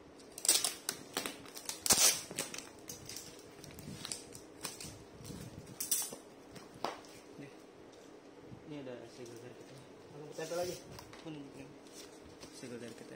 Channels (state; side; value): identical; both; correlation 1.00